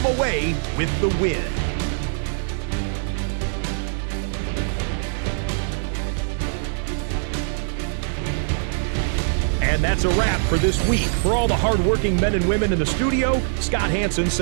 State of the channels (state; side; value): silent; left; digital silence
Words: away with the win. And that's a wrap for this week. For all the hardworking men and women in the studio, Scott Hansen